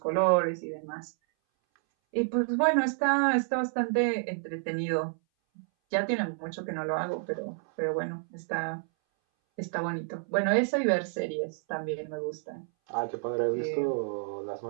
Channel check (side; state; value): left; silent; 58 dB below the other